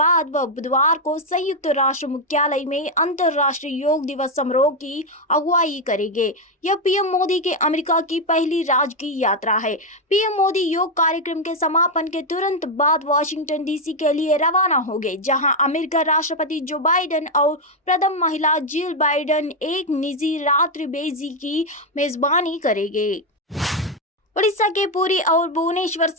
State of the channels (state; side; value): normal; both; correlation 0.04